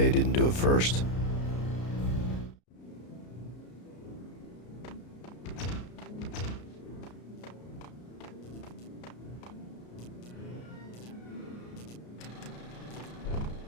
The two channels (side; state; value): right; late; 33 ms